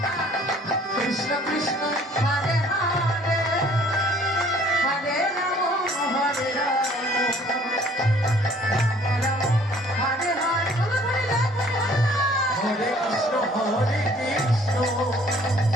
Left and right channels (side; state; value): both; normal; correlation 0.56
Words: কৃষ্ণ কৃষ্ণ হরে হরে, হরে রাম রাম রাম হরে হরে। বলো বলে যাও, হরে কৃষ্ণ